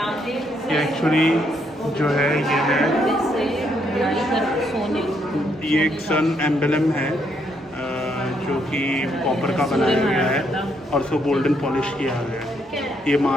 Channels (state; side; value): normal; both; correlation 0.74